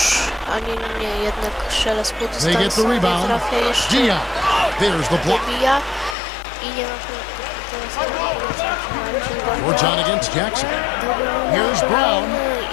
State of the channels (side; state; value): right; drops out; at 6.2 s